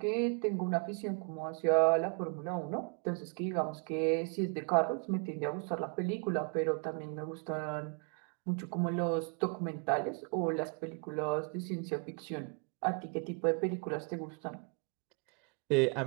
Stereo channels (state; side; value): quieter; left; 38.3 dB